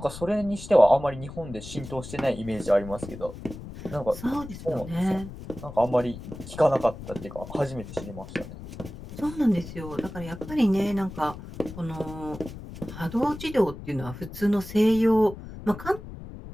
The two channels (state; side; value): noise; left; rumble, 12 dB below the sound